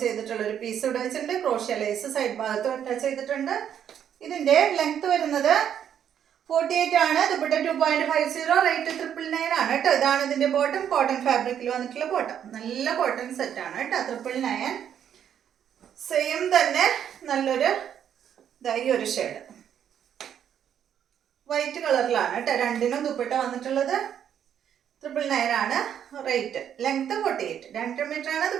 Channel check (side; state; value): left; quieter; 9.2 dB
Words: ചെയ്തിട്ടുള്ള ഒരു പീസ് ഇവിടെ വെച്ചിട്ടുണ്ട്. ക്രോഷ്യ ലേസ് സൈഡ് ഭാഗത്ത് അറ്റാച്ച് ചെയ്തിട്ടുണ്ട്. ഇതിന്റെ ലെങ്ത് വരുന്നത് 48 ആണ്. ദുപ്പട്ട 2.50, റേറ്റ് 999 ആണ് കേട്ടോ. ഇതാണ് ഇതിന്റെ ബോട്ടം. കോട്ടൺ ഫാബ്രിക്കിൽ വന്നിട്ടുള്ള ബോട്ടം. നല്ല കോട്ടൺ സെറ്റ് ആണ് കേട്ടോ. 999. സെയിം തന്നെ നല്ലൊരു ഈ ഒരു ഷെയ്ഡ് വൈറ്റ് കളറിലാണ് കേട്ടോ. രണ്ടിനും ദുപ്പട്ട വന്നിട്ടുള്ളത്. 999 ആണ് റേറ്റ്. ലെങ്ത് 48, 2 മീറ്റർ ആണ്